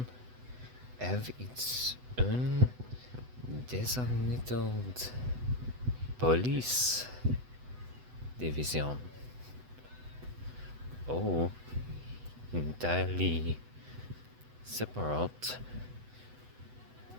have its own designated police division. Oh, entirely separate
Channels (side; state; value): left; late; 8.0 ms